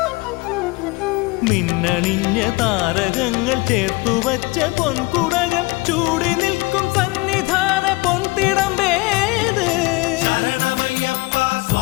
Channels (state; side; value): quieter; right; 24.0 dB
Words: മിന്നണിഞ്ഞ താരകങ്ങൾ ചേർത്തുവച്ച പൊൻകുടകൾ ചൂടി നിൽക്കും സന്നിധാന പൊൻതിടം വേത്